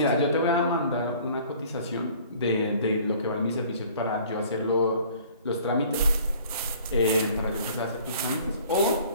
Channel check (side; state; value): both; inverted; correlation -0.52